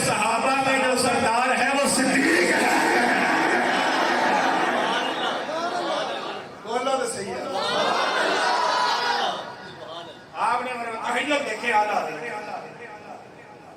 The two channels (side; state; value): both; identical; correlation 1.00